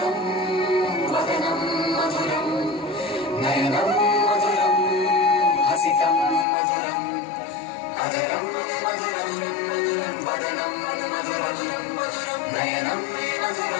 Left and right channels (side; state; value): right; drops out; at 6.5 s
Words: వదనం మధురం నయనం మధురం హసితం మధురం అజరం మధురం వదనం మధురం నయనం